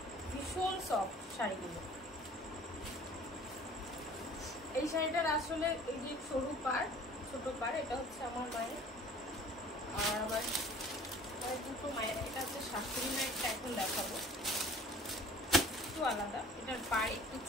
ভীষণ সফট শাড়িগুলো। এই শাড়িটার আসলে এই যে সরু পাড়, ছোট পাড়, এটা হচ্ছে আমার মায়ের, আর আমার দুটো মায়ের। এটা হচ্ছে শাশুড়ি মায়েরটা এখন দেখাবো, একটু আলাদা। এটার পাড় একটু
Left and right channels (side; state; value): both; normal; correlation 0.49